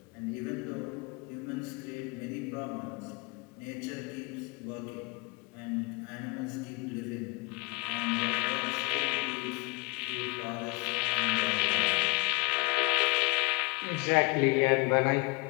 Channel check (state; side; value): quieter; right; 27.6 dB